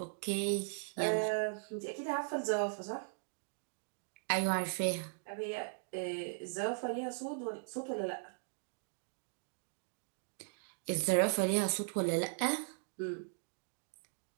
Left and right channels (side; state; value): left; silent; digital silence